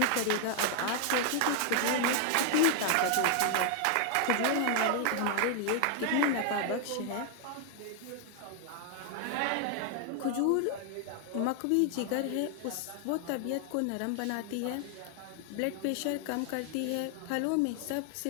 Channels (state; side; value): different; both; correlation 0.00